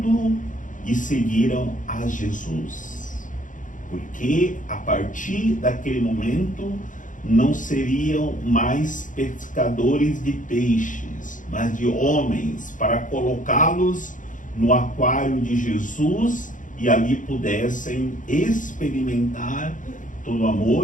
e seguiram a Jesus. Porque a partir daquele momento, não seriam mais pescadores de peixes, mas de homens, para colocá-los no aquário de Jesus e ali pudessem experimentar todo o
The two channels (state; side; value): late; right; 0.38 ms